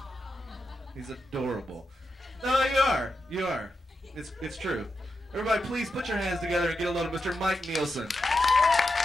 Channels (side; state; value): both; normal; correlation 0.88